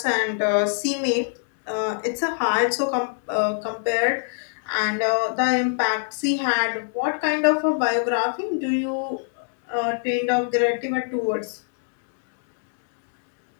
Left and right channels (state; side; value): silent; right; digital silence